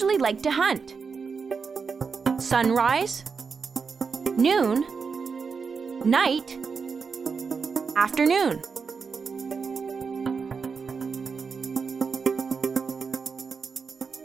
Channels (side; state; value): left; quieter; 5.4 dB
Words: like to hunt? Sunrise, noon, night, afternoon.